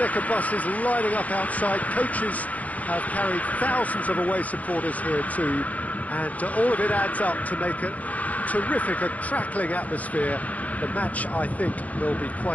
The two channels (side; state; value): right; late; 0.072 ms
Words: buses lining up outside. Coaches have carried thousands of away supporters here too, and all of it adds up to make a terrific, a crackling atmosphere. The match, I think, will be